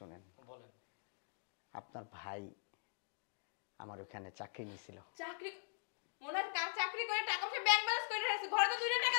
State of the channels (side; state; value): right; silent; digital silence